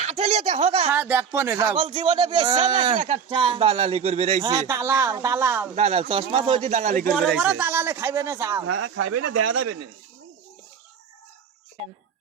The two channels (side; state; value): left; quieter; 6.8 dB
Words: আটেলিয়া দেখো গা। হ্যাঁ দেখবো না, যাও। ছাগল জীবনে বেচছে নাকি একটা? দালালি করবে রাইছে। হ্যাঁ, দালাল দালাল দালাল চশমা তো হইছে দালালি বড় করবে বড় রাইছে। দালালে খাইবে না যাও। হ্যাঁ খাইবে না, দেখা যাবে না।